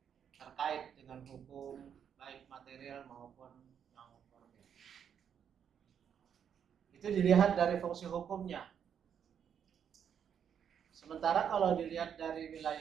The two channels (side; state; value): left; quieter; 8.2 dB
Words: terkait dengan hukum baik material maupun non formil. Itu dilihat dari fungsi hukumnya. Sementara kalau dilihat dari